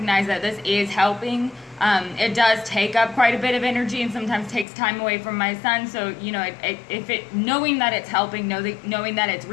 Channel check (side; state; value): right; drops out; at 4.7 s